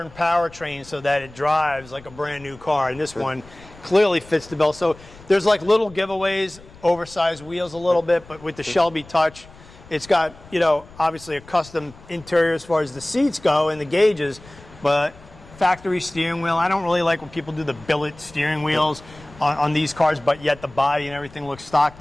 powertrain so that it drives like a brand new car. And this one clearly fits the bill. So there's like little giveaways, oversized wheels a little bit, but with the Shelby touch, it's got, you know, obviously a custom interior as far as the seats go and the gauges, but factory steering wheel. I don't really like when people do the billet steering wheels on these cars, but yet the body and everything looks stock.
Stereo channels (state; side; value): noise; left; rumble, 22 dB below the sound